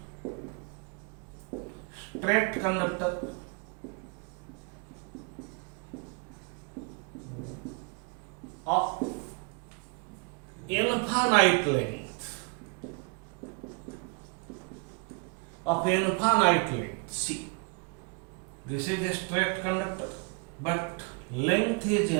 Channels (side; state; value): left; quieter; 34.7 dB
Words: conductor of infinite length. See, this is a straight conductor, but length is